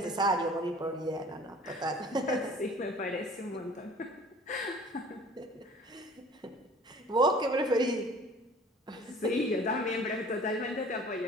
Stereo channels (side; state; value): both; normal; correlation 0.48